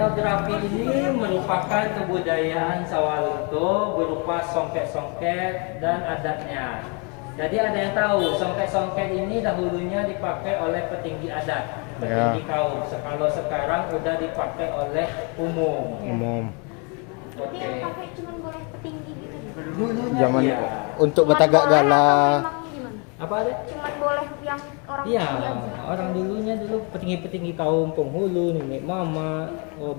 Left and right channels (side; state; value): right; quieter; 34.5 dB